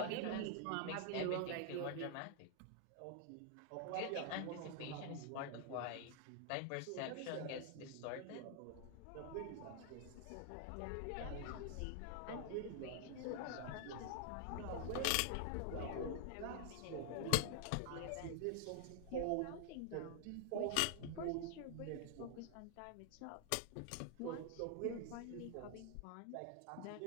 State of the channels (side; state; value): both; different; correlation 0.00